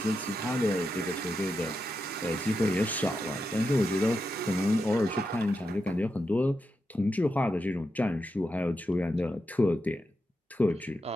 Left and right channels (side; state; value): both; normal; correlation 0.87